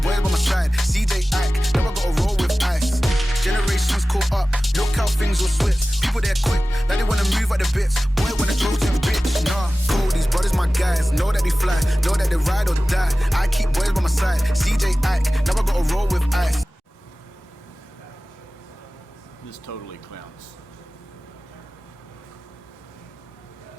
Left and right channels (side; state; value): both; normal; correlation 0.97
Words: boys by my side, CJ act, never gotta roll with ice. Generations caught up, look how things will switch. People there quick, like they wanna move at the bits. Boy wanna throw them bitch, nah. Cool, these brothers my guys, know that they fly, know that they ride or die. I keep boys by my side, CJ act, never gotta roll with ice. totally clowns.